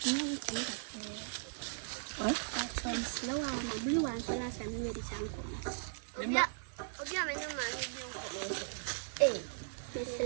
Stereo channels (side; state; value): left; silent; 53 dB below the other